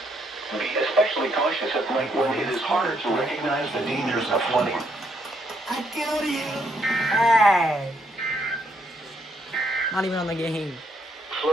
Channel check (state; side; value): normal; both; correlation 0.73